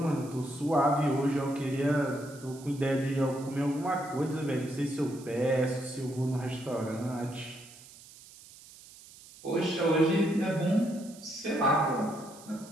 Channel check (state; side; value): noise; right; hiss, 20 dB below the sound